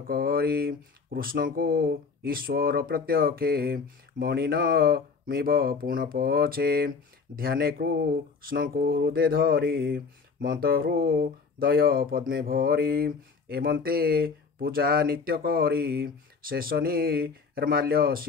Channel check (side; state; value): right; quieter; 5.1 dB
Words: करी कृष्ण को ईश्वर प्रत्यक्षे मणिन मिब पुण पछे ध्याने कृष्ण को हृदय धरी मंत्र हृदय पद्मे भरी एमंते पूजा नित्य करी शेष निर्माल्य